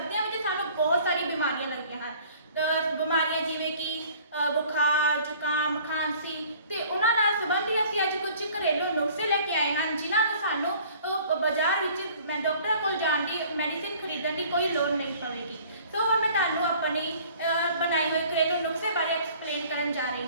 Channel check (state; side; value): inverted; both; correlation -0.52